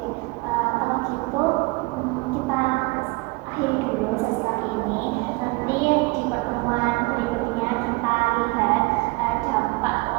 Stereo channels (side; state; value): left; quieter; 25.4 dB